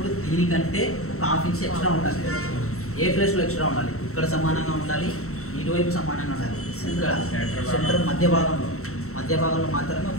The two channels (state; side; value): late; right; 0.63 ms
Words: దీనికంటే ఒక హాఫ్ ఇంచ్ ఎక్స్ట్రా ఉండాలి. ఏ ప్లేస్లో ఎక్స్ట్రా ఉండాలి? ఇక్కడ సమానంగా ఉండాలి, ఇటువైపు సమానంగా ఉండాలి. సెంటర్ మధ్య భాగంలో మాత్రమే